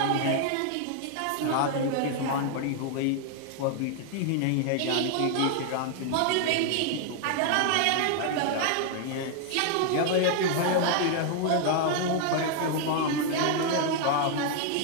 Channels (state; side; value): different; both; correlation 0.00